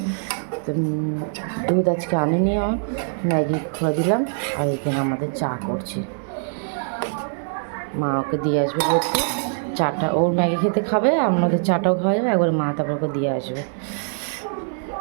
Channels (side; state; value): left; silent; digital silence